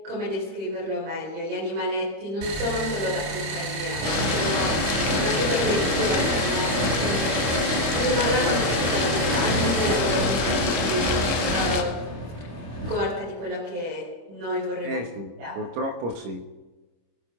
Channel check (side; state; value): left; late; 26 ms